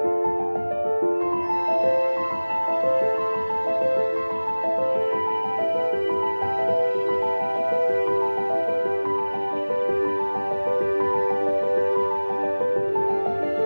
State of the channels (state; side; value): inverted; both; correlation -1.00